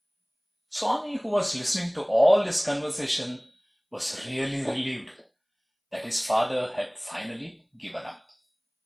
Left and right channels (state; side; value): identical; both; correlation 1.00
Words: Swami, who was listening to all this conversation, was really relieved that his father had finally given up.